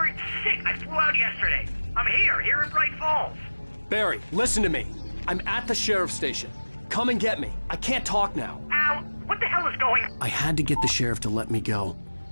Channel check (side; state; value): both; inverted; correlation -1.00